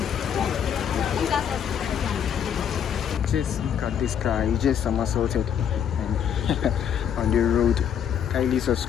Just look at this car, it's just somersaulted and on the road. Kindly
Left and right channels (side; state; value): right; quieter; 8.6 dB